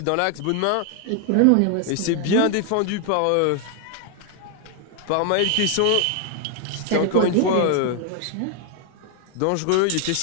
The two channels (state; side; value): different; both; correlation 0.00